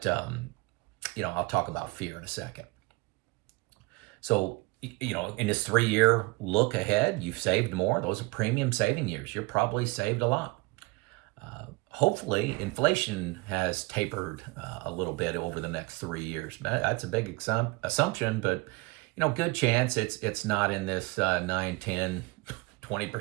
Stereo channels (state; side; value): quieter; left; 24.7 dB